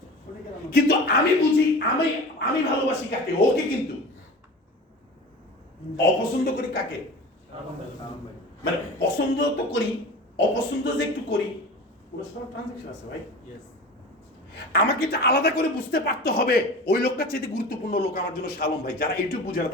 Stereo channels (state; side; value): normal; both; correlation 0.35